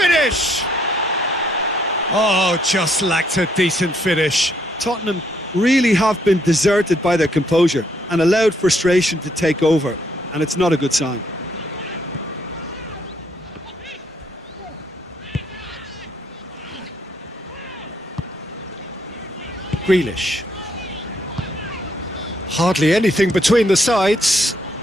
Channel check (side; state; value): both; normal; correlation 0.71